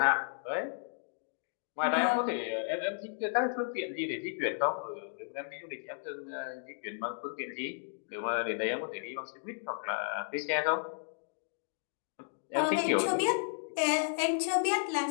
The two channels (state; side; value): silent; right; digital silence